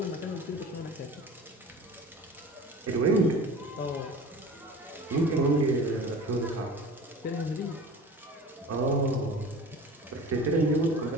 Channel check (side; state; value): both; normal; correlation 0.38